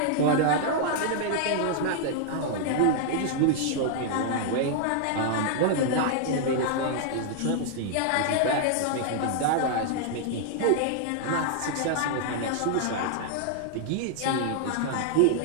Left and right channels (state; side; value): different; both; correlation -0.01